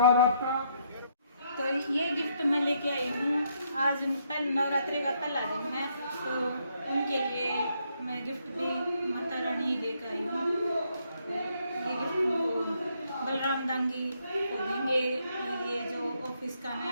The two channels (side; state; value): both; inverted; correlation -0.73